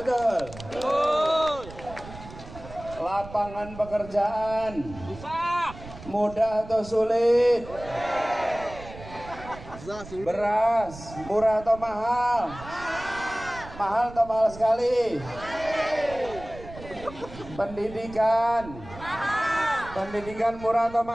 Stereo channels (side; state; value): right; noise; rumble, 15 dB below the sound